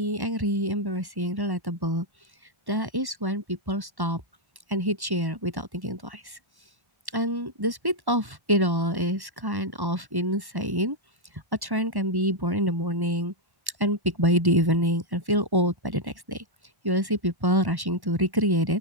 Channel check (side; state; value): left; late; 1.1 ms